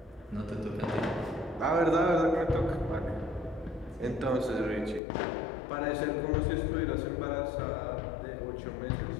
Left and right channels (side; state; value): right; drops out; at 5.0 s